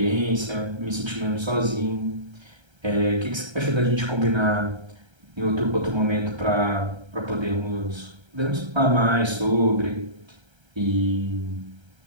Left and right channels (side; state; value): left; late; 1.3 ms